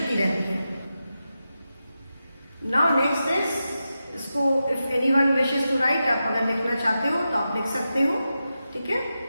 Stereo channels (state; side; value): inverted; both; correlation -0.90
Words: रहती है. नाउ नेक्स्ट इज इसको if anyone wishes to write, आप अगर लिखना चाहते हो तो आप लिख सकते हो. ठीक है,